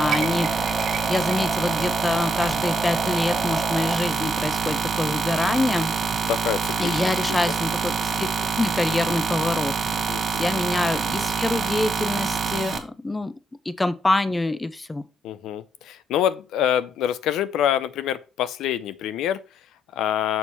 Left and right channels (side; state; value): both; normal; correlation 0.77